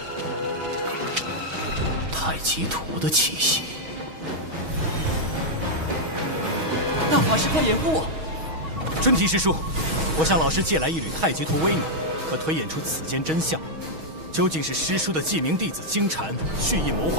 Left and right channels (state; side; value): late; left; 6.3 ms